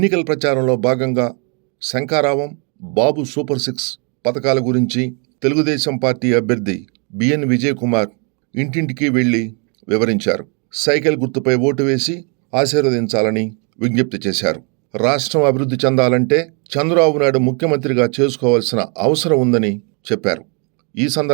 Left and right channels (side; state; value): left; quieter; 36.6 dB